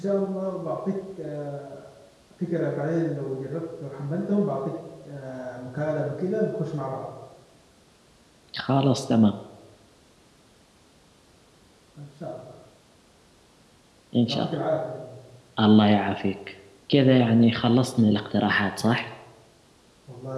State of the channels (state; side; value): identical; both; correlation 1.00